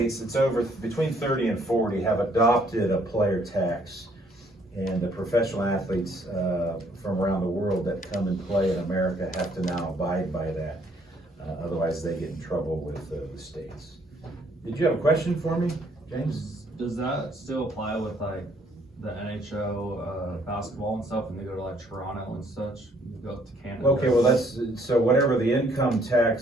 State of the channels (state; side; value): normal; both; correlation 0.65